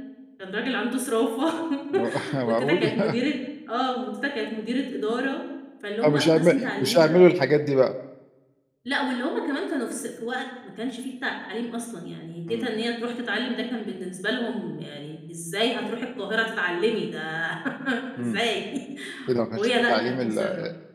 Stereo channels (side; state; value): both; identical; correlation 1.00